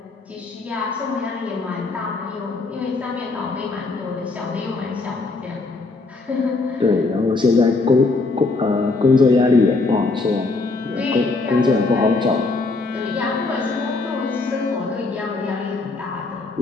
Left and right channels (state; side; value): quieter; right; 3.6 dB